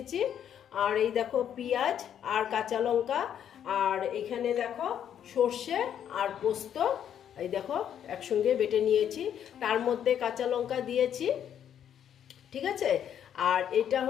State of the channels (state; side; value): quieter; right; 9.4 dB